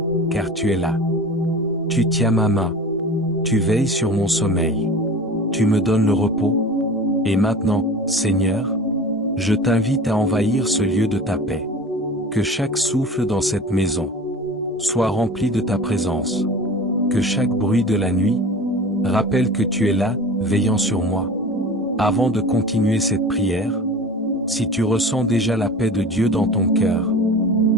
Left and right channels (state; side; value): normal; both; correlation 0.37